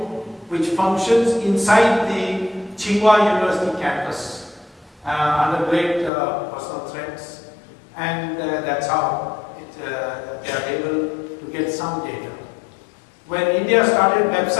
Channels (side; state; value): right; drops out; at 6.1 s